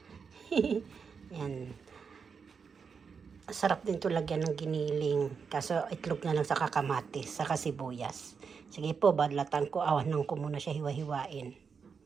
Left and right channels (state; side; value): quieter; left; 5.9 dB